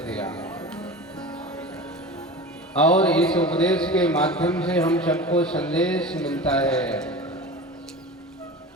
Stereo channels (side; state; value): both; normal; correlation 0.33